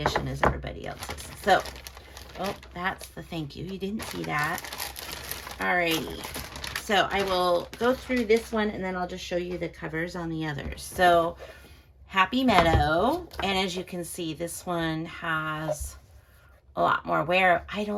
as everybody else's. So, oh, that's the thank you. You didn't see that. Alrighty. So I will go through this one and then I'll just show you the covers on the others. So Happy Meadow. And as you can see, this one has a lot more wear. I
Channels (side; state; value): both; identical; correlation 1.00